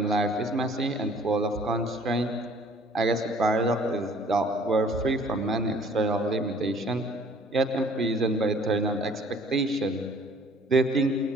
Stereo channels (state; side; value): normal; both; correlation 0.55